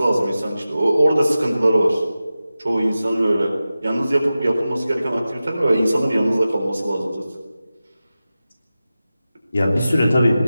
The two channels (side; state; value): both; inverted; correlation -0.94